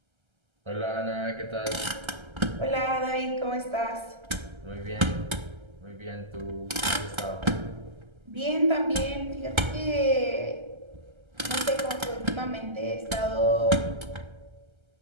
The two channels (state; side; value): late; left; 1.3 ms